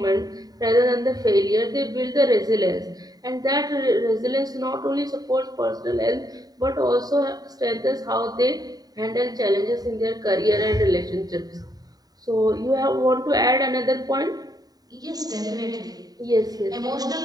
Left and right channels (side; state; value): left; late; 0.18 ms